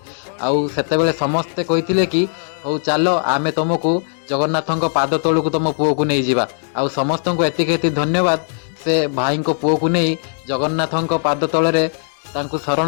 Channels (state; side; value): silent; right; digital silence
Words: ଆଉ ସେତେବେଳେ ସମସ୍ତେ କହିଥିଲେ କି ହଉ ଚାଲ ଆମେ ତମକୁ ଜଗନ୍ନାଥଙ୍କ ପାଦ ତଳକୁ ତମ ପୁଅକୁ ନେଇଯିବା। ଆଉ ସମସ୍ତଙ୍କୁ ଏତିକି ଧନ୍ୟବାଦ, ସେ ଭାଇଙ୍କ ପୁଅକୁ ନେଇ ଜଗନ୍ନାଥଙ୍କ ପାଦ ତଳରେ ତାଙ୍କୁ